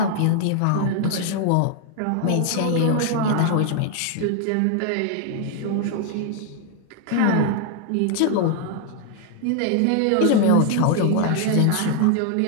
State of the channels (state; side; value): different; both; correlation 0.00